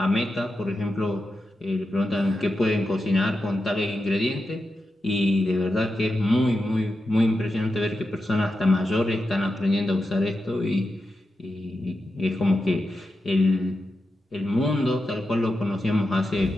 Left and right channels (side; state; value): both; normal; correlation 0.89